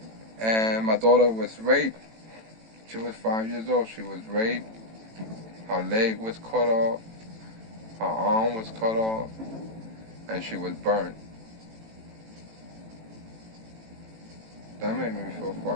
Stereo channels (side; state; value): left; late; 18 ms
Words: and my daughter was raped. She was 5 years old. She was raped. Her leg was cut off. Her arm was cut off. And she was burnt. That made me feel